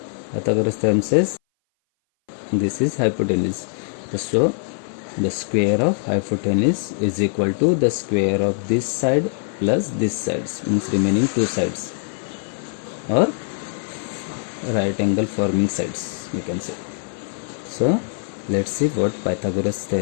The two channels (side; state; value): right; silent; 59 dB below the other